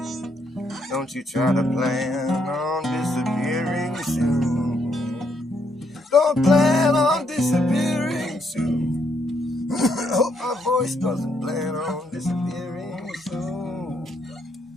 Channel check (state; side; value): normal; both; correlation 0.74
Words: Don't you try to plan on disappearing soon. Don't plan on disappearing soon. I hope my voice doesn't plan on disappearing soon.